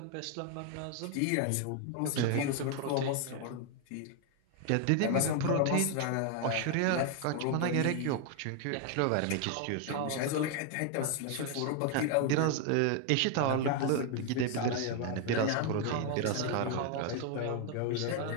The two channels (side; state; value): both; different; correlation 0.00